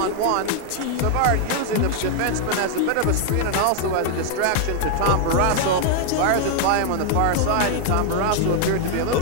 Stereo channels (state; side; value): different; both; correlation 0.00